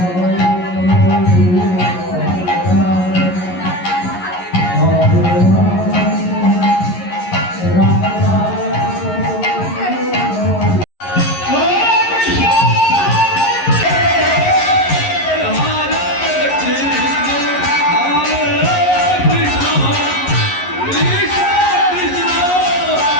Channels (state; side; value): late; right; 11 ms